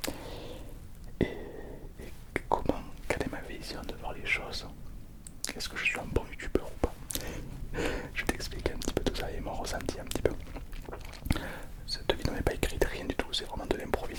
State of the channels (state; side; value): identical; both; correlation 1.00